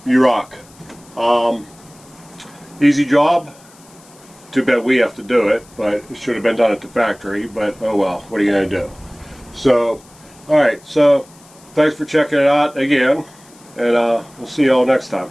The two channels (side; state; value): left; noise; hiss, 26 dB below the sound